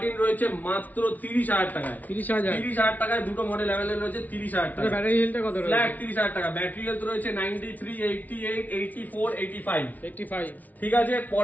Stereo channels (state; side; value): late; right; 0.077 ms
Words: রয়েছে মাত্র 30,000 টাকায়, 30,000 টাকায় দুটো মডেল অ্যাভেলেবল রয়েছে। 30,000 টাকা ব্যাটারি হেলথ, কত রয়েছে? ফ্ল্যাট 30,000 টাকা ব্যাটারি হেলথ রয়েছে 93, 88, 84, 85। ঠিক আছে,